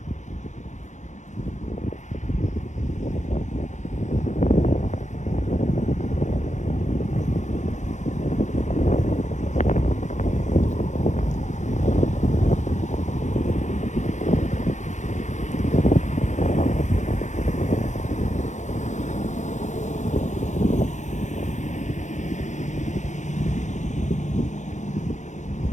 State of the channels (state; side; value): late; right; 0.35 ms